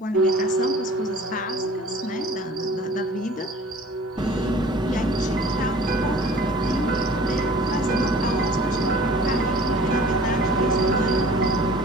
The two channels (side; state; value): both; normal; correlation 0.47